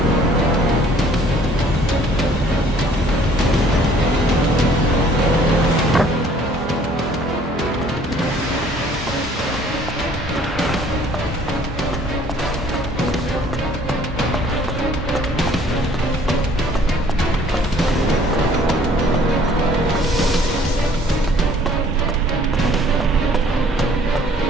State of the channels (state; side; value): normal; both; correlation 0.57